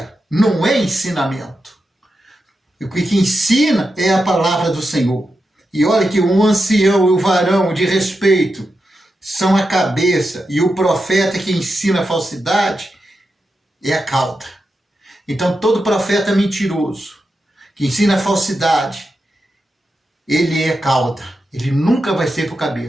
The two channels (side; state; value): both; normal; correlation 0.88